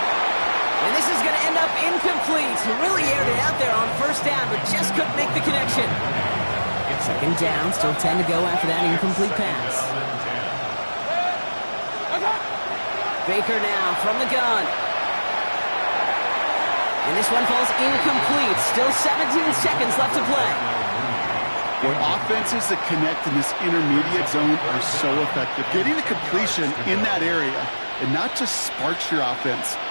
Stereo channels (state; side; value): inverted; both; correlation -1.00